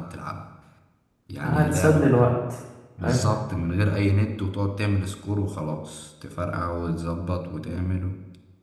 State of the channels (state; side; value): identical; both; correlation 1.00